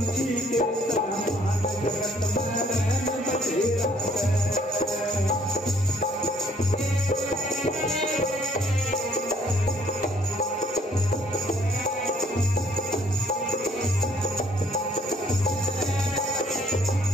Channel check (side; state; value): both; normal; correlation 0.62